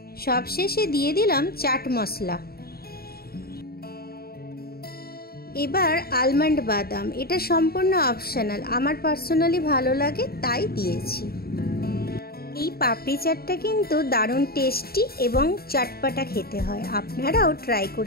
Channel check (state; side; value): late; right; 0.45 ms